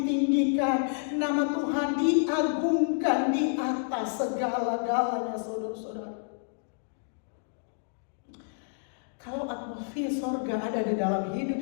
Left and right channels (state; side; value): silent; right; digital silence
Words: nama Tuhan diagungkan di atas segala-galanya saudara-saudara. Kalau atmosfer sorga ada di dalam hidup